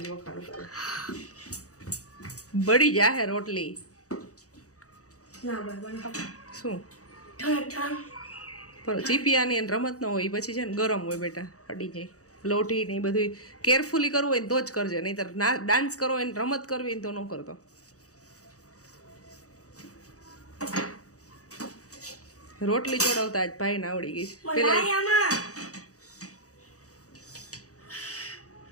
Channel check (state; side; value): late; right; 0.66 ms